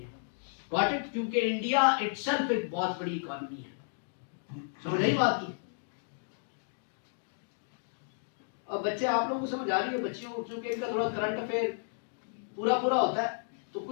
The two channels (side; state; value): right; silent; digital silence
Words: Got it? क्योंकि इंडिया इटसेल्फ एक बहुत बड़ी इकोनॉमी है। समझ आई बात की? अब बच्चे, आप लोगों को समझ आ रही है? बच्चियों को क्योंकि इनका थोड़ा करंट अफेयर पूरा पूरा होता है तो